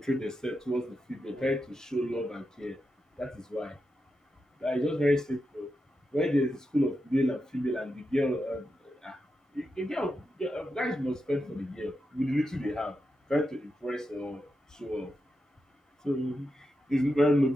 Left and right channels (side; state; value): both; normal; correlation 0.87